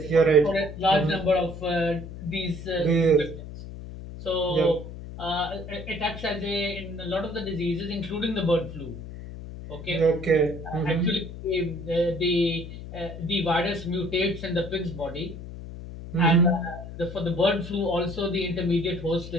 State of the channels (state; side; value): noise; left; hum, 11 dB below the sound